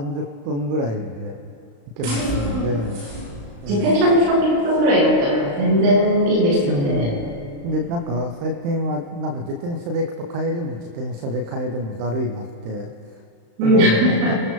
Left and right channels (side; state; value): left; late; 35 ms